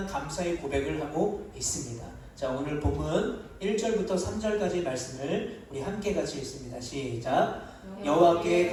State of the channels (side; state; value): both; identical; correlation 1.00